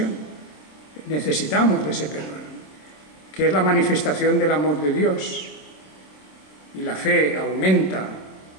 Necesitamos de ese perdón, que es la manifestación del amor de Dios. Y la fe aumenta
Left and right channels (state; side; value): late; right; 27 ms